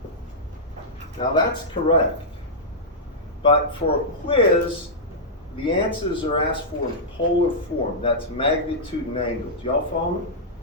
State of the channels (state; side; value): normal; both; correlation -0.10